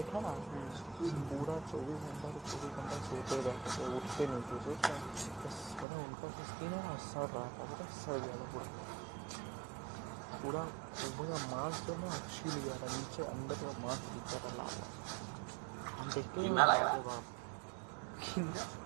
था ना, पूरा 24 घंटा सोते रहते थे, उठते नहीं थे। बस पता उनका स्किन है ना, सड़ रहा था, पता सड़ गया था पूरा पूरा मांस जो ना छील गया था, नीचे अंदर का मांस दिख रहा था लाल। हम देखते हैं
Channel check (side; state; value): left; drops out; at 5.9 s